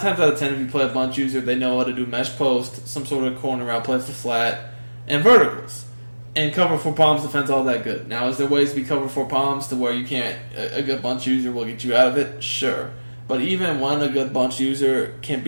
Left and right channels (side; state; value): both; inverted; correlation -1.00